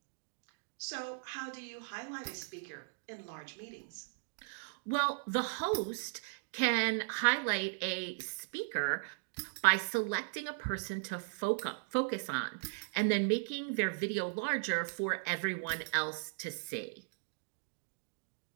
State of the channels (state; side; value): silent; left; digital silence